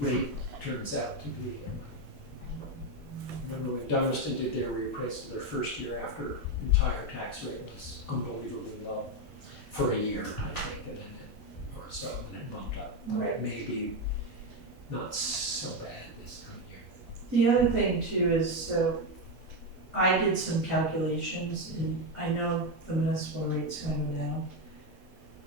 rate turns out to be. Remember when Dummerston did their reappraisal, their first year after entire tax rate was unbelievably low for a year, I think, and then or so, and it bumped up. Right. Maybe not so bad this current year. The other thing too is, so I did some calculations and I know the municipal rate's gonna go down.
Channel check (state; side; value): normal; both; correlation 0.08